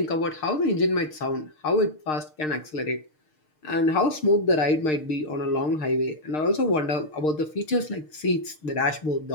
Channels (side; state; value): right; late; 6.5 ms